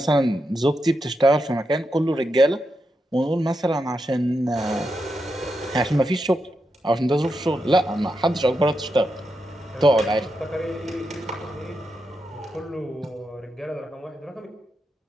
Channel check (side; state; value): both; normal; correlation 0.86